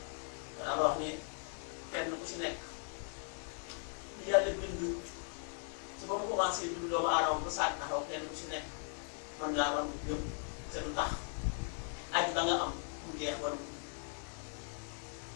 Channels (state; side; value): silent; right; 52 dB below the other